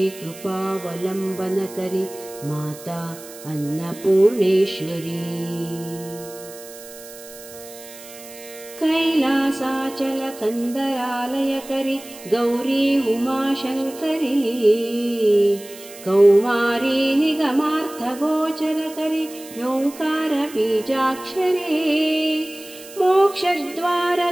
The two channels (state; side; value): noise; right; hiss, 17 dB below the sound